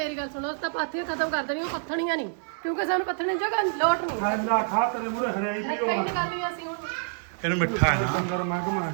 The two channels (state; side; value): silent; left; 60 dB below the other